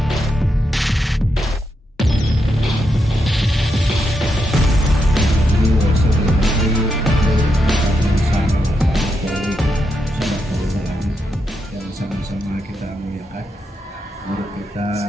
Sama-sama kita muliakan guru kita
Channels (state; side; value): normal; both; correlation 0.83